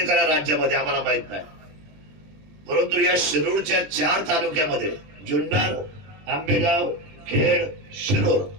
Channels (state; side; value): late; left; 20 ms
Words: करा राज्यामध्ये, आम्हाला माहित नाही. परंतु या शिरूरच्या 4 तालुक्यामध्ये जुन्नर, आंबेगाव, खेड, शिरूर